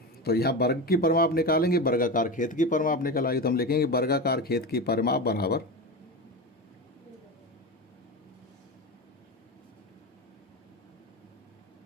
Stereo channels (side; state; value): both; normal; correlation 0.22